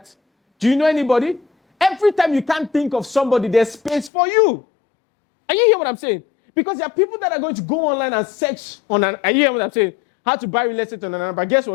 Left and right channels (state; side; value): drops out; right; at 4.1 s